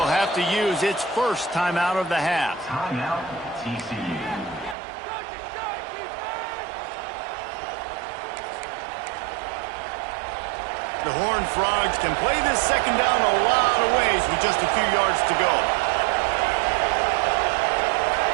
have to use its first timeout of the half. Timeout, TCU. The Horned Frogs can play this second down a lot of ways with just a few yards to go.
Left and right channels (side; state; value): left; drops out; at 4.8 s